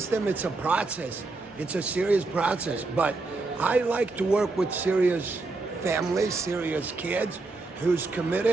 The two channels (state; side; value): quieter; left; 3.5 dB